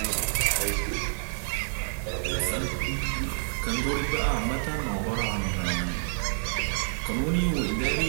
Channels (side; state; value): left; silent; digital silence